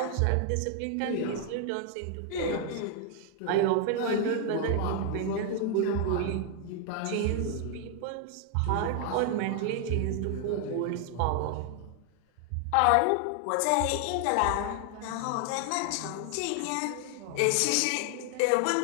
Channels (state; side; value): different; both; correlation 0.00